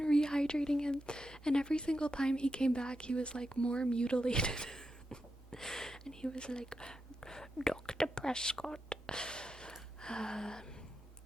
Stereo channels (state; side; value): normal; both; correlation 0.87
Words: rehydrating him. And every single time he came back, he was like more mutilated. And he was like, Dr. Prescott.